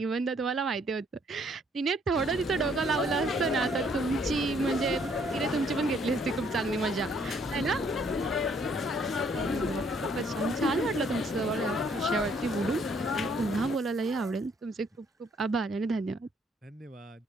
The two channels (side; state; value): both; normal; correlation 0.65